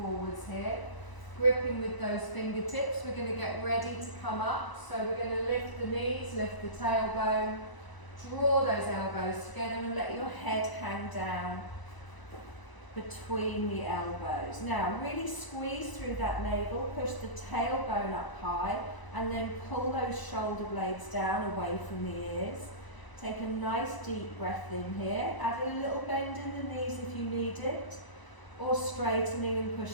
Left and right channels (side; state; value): right; late; 1.0 ms